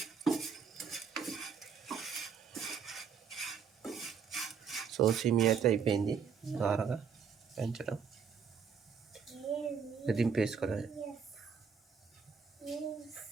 సో సేమియా అయితే అయిపోయింది. ద్వారగా పెంచడం దింపేసుకోవడం.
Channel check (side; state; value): left; quieter; 6.5 dB